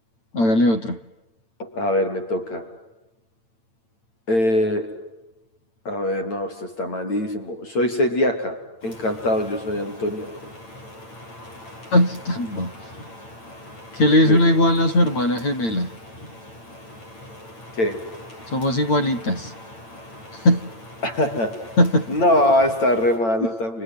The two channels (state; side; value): late; right; 8.9 ms